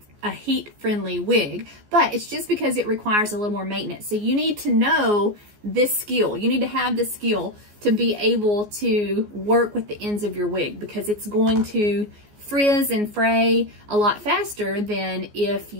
heat-friendly wig, but it's just because it requires a little more maintenance. So you need to know this skill. You need to have this skill to be able to work with the ends of your wig, because it's going to frizz and fray a lot faster than if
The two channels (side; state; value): left; late; 14 ms